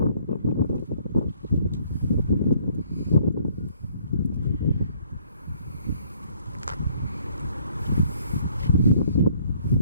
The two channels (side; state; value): both; inverted; correlation -0.62